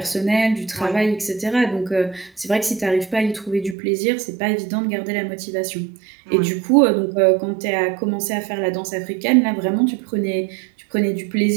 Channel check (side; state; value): left; drops out; at 3.8 s